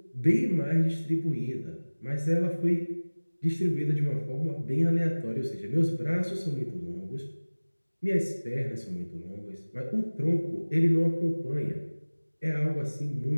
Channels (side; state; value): both; inverted; correlation -1.00